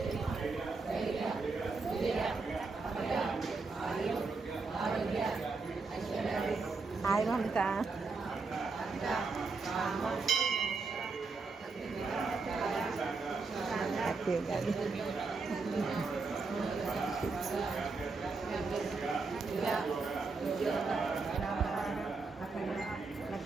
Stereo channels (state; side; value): quieter; left; 4.2 dB